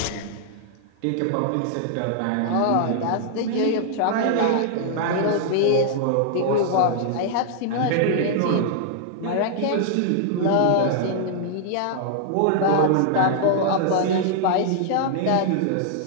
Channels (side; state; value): both; different; correlation -0.01